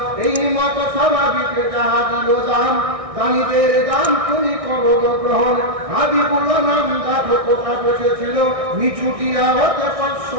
এই মতো স্বাভাবিকে যাহা দিল দাম, দানিদের দাম তুমি করো গ্রহণ, হাবিবুল্লাহ নাম দেখো কোথা বসেছিল, নিচুটিয়া হতে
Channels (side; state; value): left; late; 1.6 ms